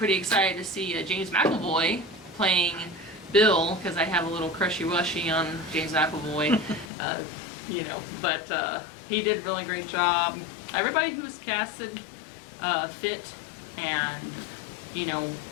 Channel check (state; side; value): drops out; right; at 6.9 s